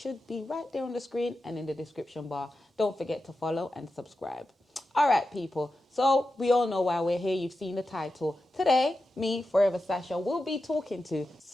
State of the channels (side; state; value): both; normal; correlation 0.91